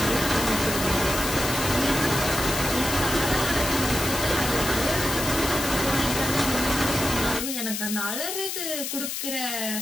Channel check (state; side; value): noise; left; hiss, 4 dB below the sound